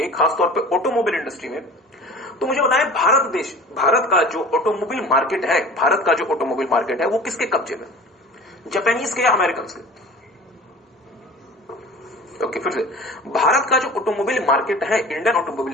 खासतौर पे ऑटोमोबाइल इंडस्ट्री में, तो मुझे बताएं भारत का जो ऑटोमोबाइल मार्केट है, भारत का जो ऑटोमोबाइल मार्केट है वो किसके कब्जे में, जापानीज के या अमेरिकन के? ओके, फिर से, भारत का जो ऑटोमोबाइल मार्केट है, इंडियन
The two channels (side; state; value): both; normal; correlation 0.41